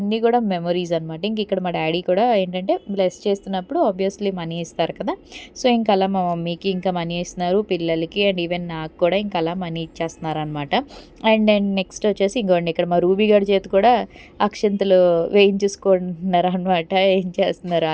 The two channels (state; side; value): identical; both; correlation 1.00